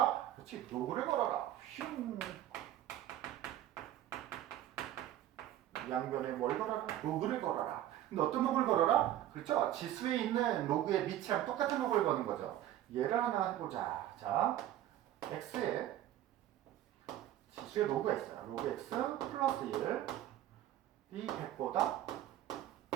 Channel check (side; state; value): left; quieter; 12.7 dB